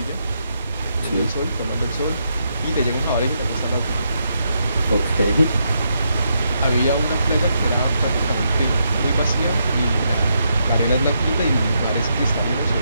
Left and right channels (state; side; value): inverted; both; correlation -0.79